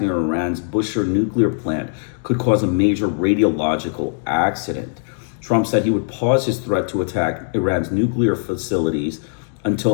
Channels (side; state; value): right; silent; digital silence